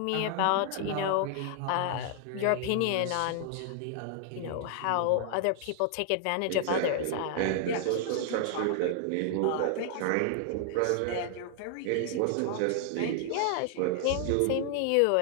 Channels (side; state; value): both; different; correlation 0.00